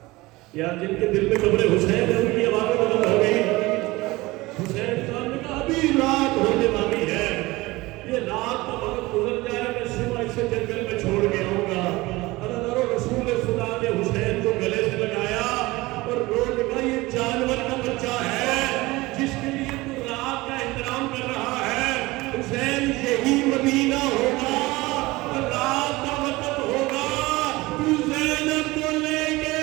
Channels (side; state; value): left; quieter; 20.8 dB